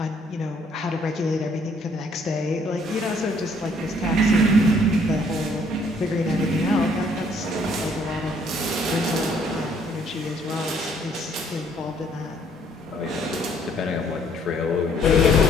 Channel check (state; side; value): normal; both; correlation 0.64